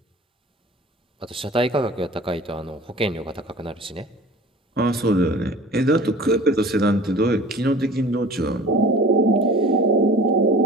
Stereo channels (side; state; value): both; normal; correlation 0.44